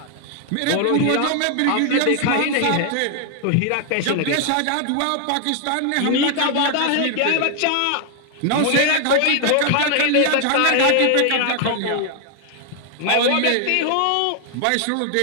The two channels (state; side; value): different; both; correlation 0.00